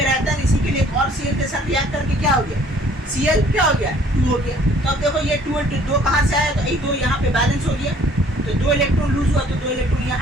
रहता है, इसी के लिए एक और Cl के साथ रिएक्ट करके क्या हो गया, Cl क्या हो गया, 2 हो गया। तो अब देखो ये 2 और 2 कहाँ से आया, तो ये 2 यहाँ पे बैलेंस हो गया, तो 2 इलेक्ट्रॉन लूज हुआ, तो 2 इलेक्ट्रॉन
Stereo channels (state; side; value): normal; both; correlation 0.57